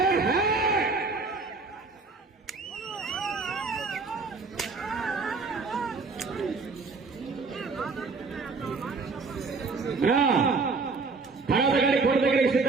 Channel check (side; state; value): left; quieter; 4.2 dB